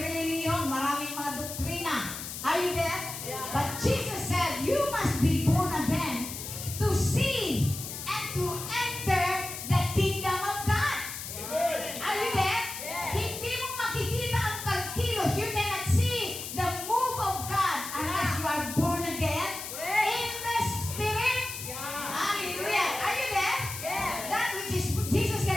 maraming mga doktrina. Are you there? But Jesus said, you must be born again to see and to enter the kingdom of God. Are you there? Hindi mo makikita ang pagkilos. You cannot see the move of God unless you are born again in the Spirit. Hallelujah. Are you there? That which is, Jesus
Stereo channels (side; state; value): left; noise; hiss, 8 dB below the sound